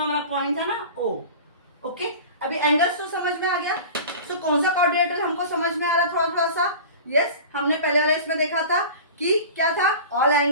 हमारा पॉइंट है ना O। ओके, अभी एंगल्स तो समझ में आ गया। तो कौन सा क्वाड्रिलेटरल हमको समझ में आ रहा है थोड़ा थोड़ा सा। यस, हमने पहले वाले इसमें देखा था कि क्या था, ऑल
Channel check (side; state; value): both; inverted; correlation -0.37